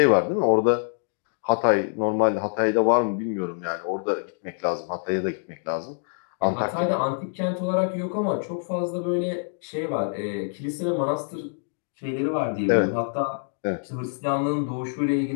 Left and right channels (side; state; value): right; silent; digital silence